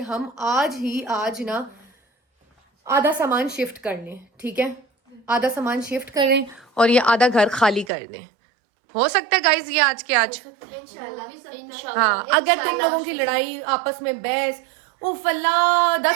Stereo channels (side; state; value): left; drops out; at 7.9 s